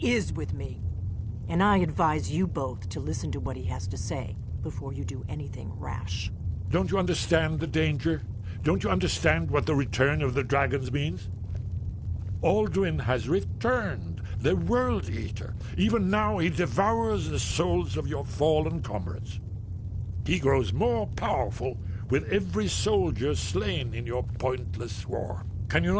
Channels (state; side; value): identical; both; correlation 1.00